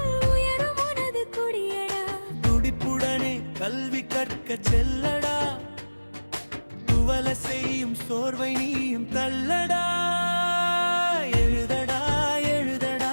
உயரும் உனது கொடியடா. துடிப்புடனே கல்வி கற்க செல்லடா. துவல செய்யும் சோர்வை நீயும் தள்ளடா. எழுதடா எழுதடா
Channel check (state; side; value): inverted; both; correlation -1.00